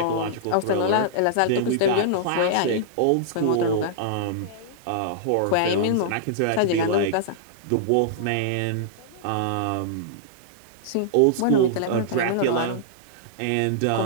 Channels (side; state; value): both; different; correlation -0.02